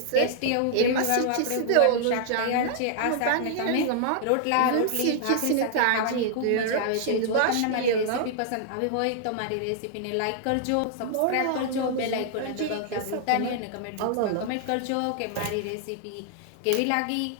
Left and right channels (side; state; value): both; different; correlation -0.01